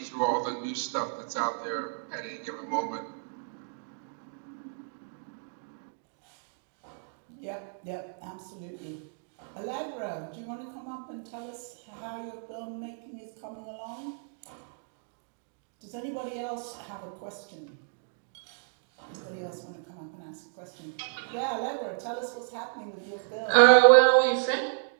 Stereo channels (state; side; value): silent; left; digital silence